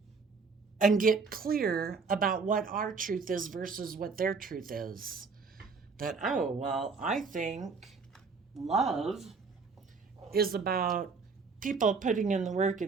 and get clear about what our truth is versus what their truth is. That, I think love is about people putting in the work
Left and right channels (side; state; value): left; quieter; 4.8 dB